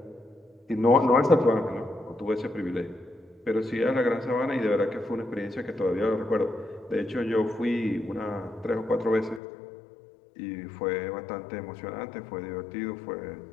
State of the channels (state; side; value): drops out; right; at 9.4 s